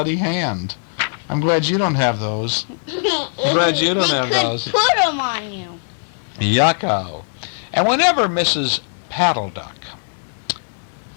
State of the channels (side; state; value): right; silent; digital silence